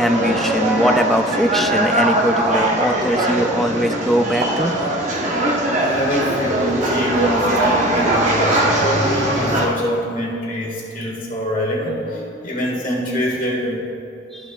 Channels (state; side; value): normal; both; correlation 0.41